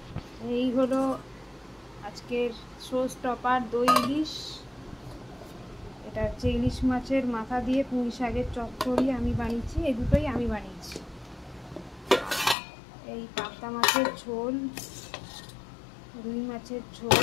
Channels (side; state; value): right; drops out; at 12.6 s